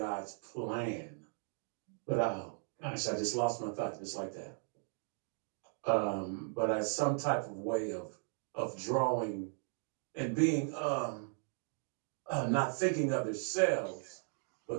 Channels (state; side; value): silent; left; 53 dB below the other